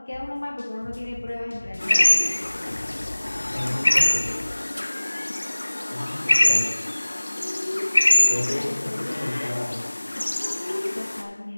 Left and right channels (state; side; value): inverted; both; correlation -1.00